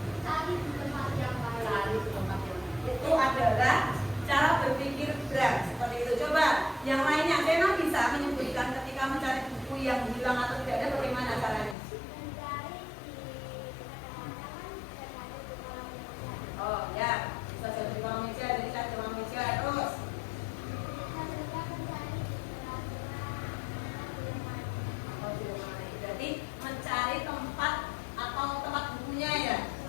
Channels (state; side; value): drops out; right; at 11.8 s